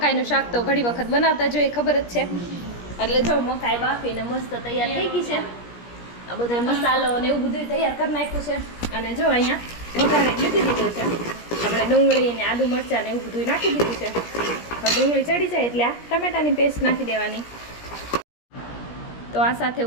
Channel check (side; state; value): right; late; 17 ms